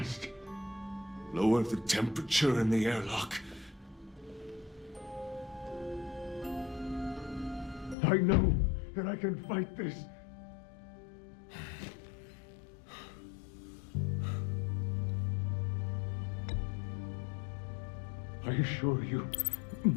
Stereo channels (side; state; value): right; drops out; at 8.0 s